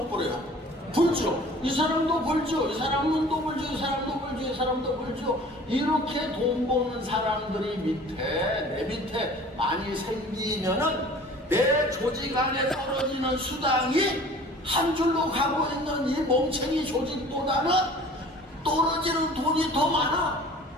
벌어요? 벌죠. 이 사람도 벌죠. 이 사람은 또 벌죠. 이 사람도 벌죠. 이 사람도 벌죠. 이렇게 돈 버는 사람들이 내 밑에 많이 생기면은 내 조직 안에 떨어지는 수당이 한 줄로 가고 있는 이 멍청이 조직보다는 떨어지는 돈이 더 많아.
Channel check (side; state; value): both; normal; correlation 0.47